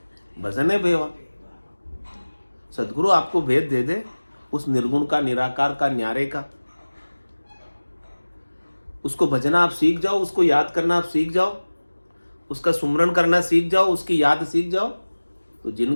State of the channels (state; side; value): inverted; both; correlation -1.00